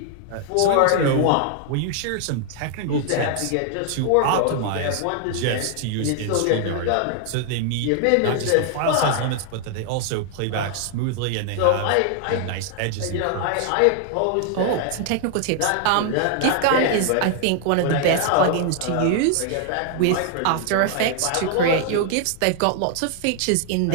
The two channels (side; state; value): both; different; correlation 0.00